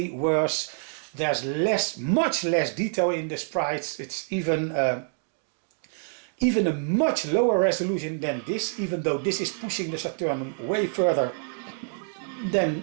worse. There's much less detail in the sprites. It's even a much lower resolution than this, even though this is pushing the Saturn way further than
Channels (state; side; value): silent; left; 60 dB below the other